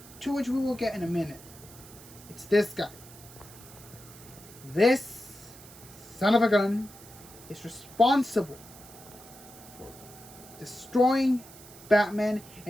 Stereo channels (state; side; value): noise; right; hiss, 19 dB below the sound